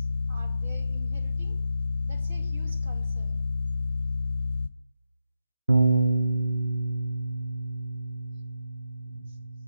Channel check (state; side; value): inverted; both; correlation -0.86